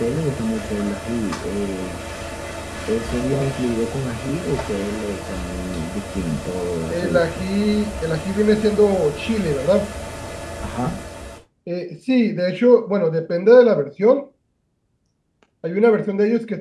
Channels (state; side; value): identical; both; correlation 1.00